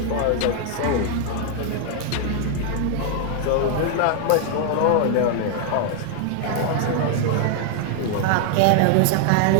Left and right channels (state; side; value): different; both; correlation 0.00